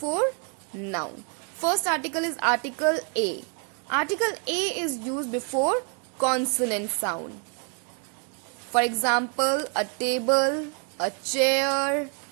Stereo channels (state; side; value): quieter; left; 38.9 dB